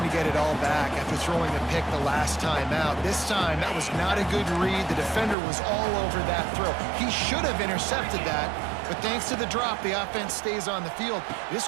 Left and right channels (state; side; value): drops out; left; at 5.4 s